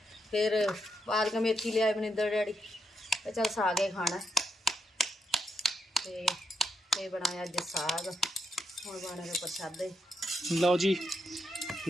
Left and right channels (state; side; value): normal; both; correlation 0.81